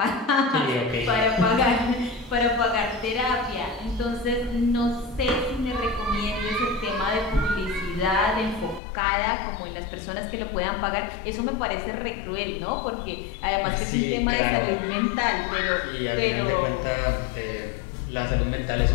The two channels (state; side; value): drops out; right; at 8.8 s